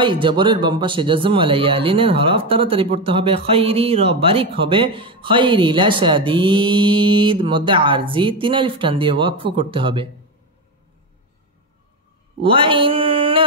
জবরের বাম পাশে জজম ওয়ালা ইয়া লিনের হরফ তাড়াতাড়ি পড়তে হবে। খাইরি র বারিক হবে। খাইরি লাশাদীদ মধ্যে আরজি ৩ আলিফ টান দিয়ে ওয়াকফ করতে হবে।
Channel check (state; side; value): normal; both; correlation 0.14